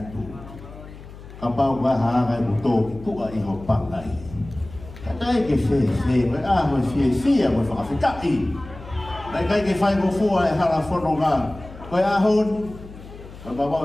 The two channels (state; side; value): noise; left; hum, 16 dB below the sound